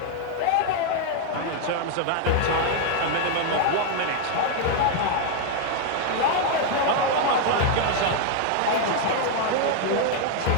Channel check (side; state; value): both; different; correlation 0.00